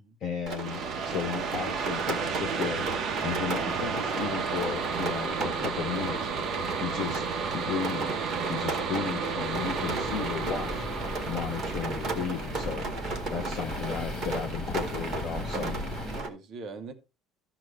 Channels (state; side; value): normal; both; correlation 0.46